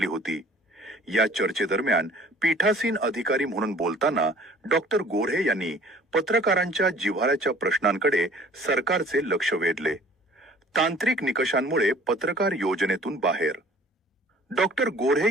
होती। या चर्चेदरम्यान पीठासीन अधिकारी म्हणून बोलताना डॉक्टर गोरे यांनी पत्रकारांच्या जिव्हाळ्याच्या प्रश्नांकडे सरकारचे लक्ष वेधले। तांत्रिक निकषांमुळे पत्रकार योजनेतून बाहेर। डॉक्टर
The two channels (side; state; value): both; normal; correlation 0.51